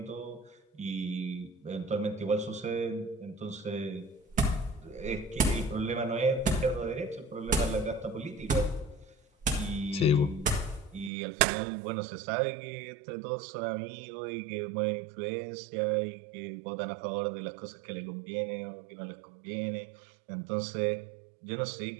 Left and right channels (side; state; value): left; drops out; at 11.1 s